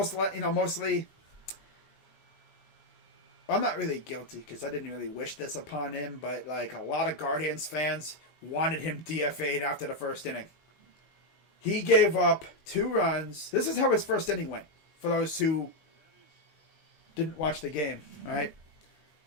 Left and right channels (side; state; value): right; late; 19 ms